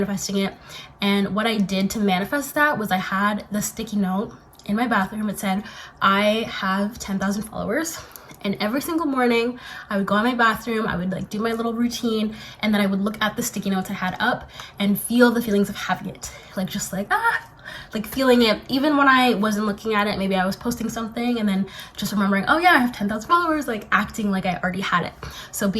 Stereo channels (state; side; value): identical; both; correlation 1.00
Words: it. And what I did to manifest that was I had the sticky note in my bathroom. It said, I have 10,000 followers. And every single morning I would go in my bathroom, I would like do my little routine, and then I would look at the sticky notes I had up and feel the feelings of having it. Like just like, like feeling it. Even when I wasn't looking at it, maybe I was posting something and then just remembering, oh yeah, I have 10,000 followers, like acting like I already had it. So